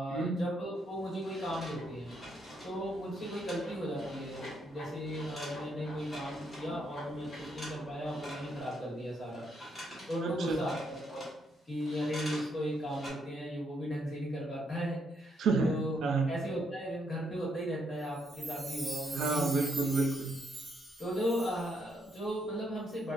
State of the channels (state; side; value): normal; both; correlation 0.75